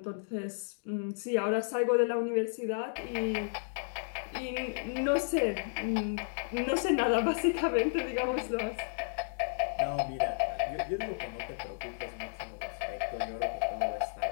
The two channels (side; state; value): right; silent; digital silence